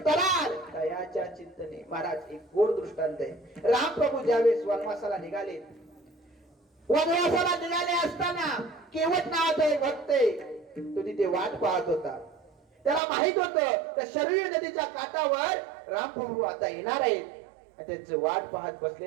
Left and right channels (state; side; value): drops out; left; at 13.0 s